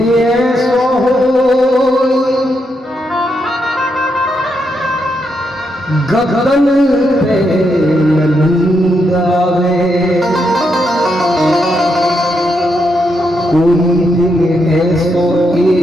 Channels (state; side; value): normal; both; correlation 0.81